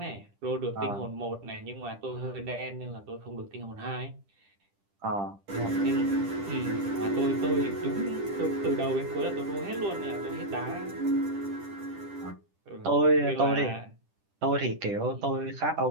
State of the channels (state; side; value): late; left; 10 ms